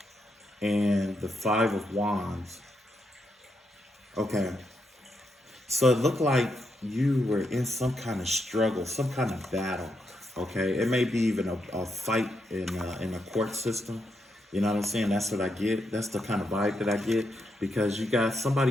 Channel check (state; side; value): normal; both; correlation 0.81